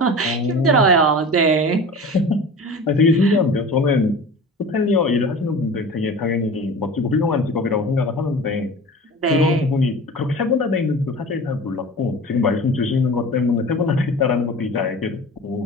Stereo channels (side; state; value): both; normal; correlation 0.36